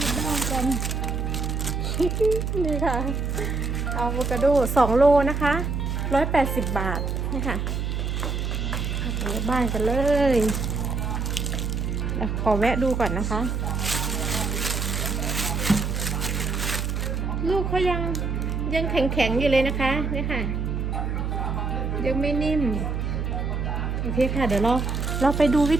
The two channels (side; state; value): right; noise; hum, 1 dB below the sound